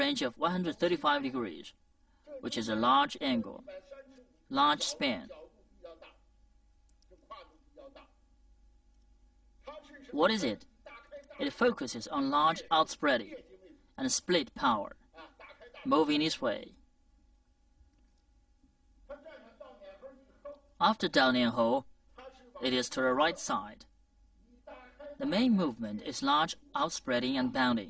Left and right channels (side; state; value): both; identical; correlation 1.00